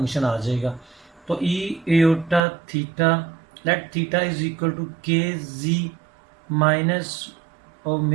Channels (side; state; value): left; drops out; at 2.4 s